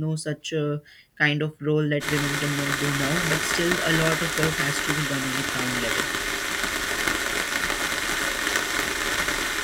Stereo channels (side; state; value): both; identical; correlation 1.00